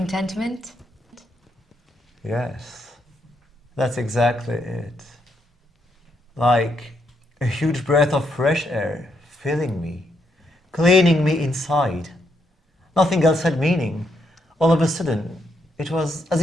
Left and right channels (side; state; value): both; normal; correlation 0.77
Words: Yes. That's exactly it. Like a huge breath of fresh air filling me, cleaning me inside. Nothing else had meaning. All of a sudden, it was as